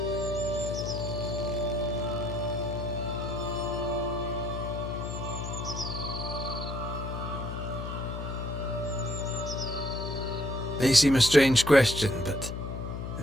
May seem a strange question, but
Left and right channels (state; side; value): noise; left; hum, 5 dB below the sound